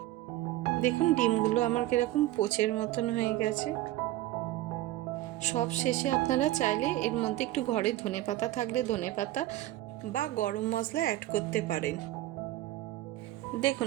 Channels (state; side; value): quieter; left; 15.8 dB